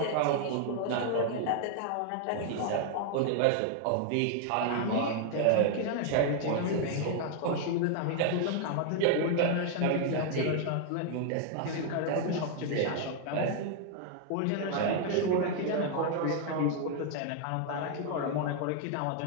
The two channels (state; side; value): different; both; correlation 0.00